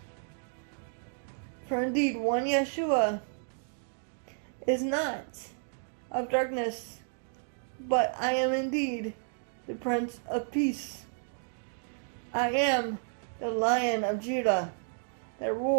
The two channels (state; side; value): silent; left; digital silence